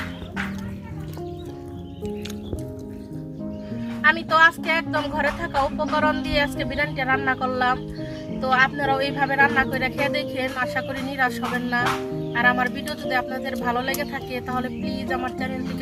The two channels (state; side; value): identical; both; correlation 1.00